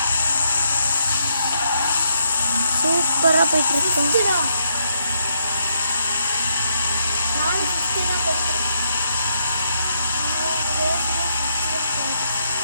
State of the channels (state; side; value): inverted; both; correlation -0.76